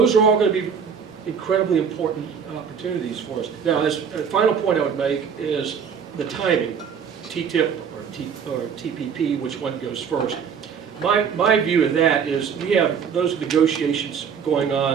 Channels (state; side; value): quieter; left; 6.9 dB